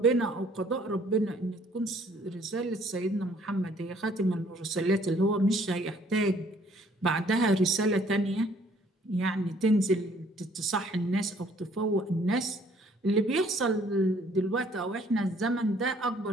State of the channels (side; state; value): both; normal; correlation 0.60